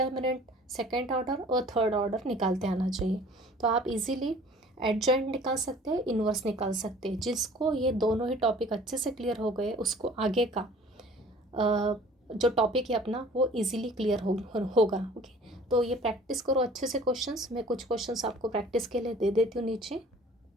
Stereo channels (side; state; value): both; normal; correlation 0.49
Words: सेकेंड ऑर्डर और थर्ड ऑर्डर निकालते आना चाहिए. तो आप इजीली एडजॉइंट निकाल सकते हैं, इन्वर्स निकाल सकते हैं. जिसको ये दोनों ही टॉपिक अच्छे से क्लियर हो गए उसको आगे का जो टॉपिक है अपना वो इजीली क्लियर होगा. ओके, तो ये प्रैक्टिस करो अच्छे से क्वेश्चंस. मैं कुछ क्वेश्चंस आपको प्रैक्टिस के लिए दे देती हूँ नीचे.